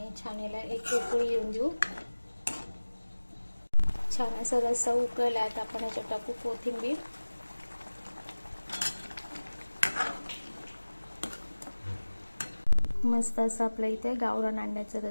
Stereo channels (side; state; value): both; inverted; correlation -1.00